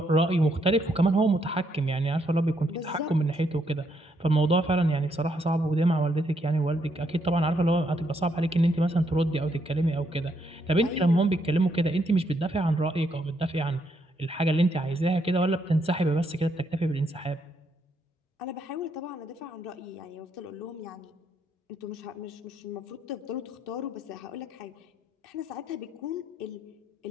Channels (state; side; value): normal; both; correlation 0.75